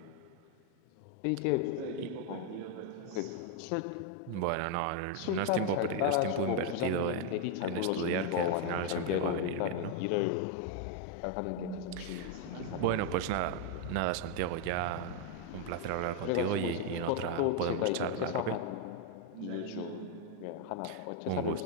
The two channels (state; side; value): different; both; correlation 0.00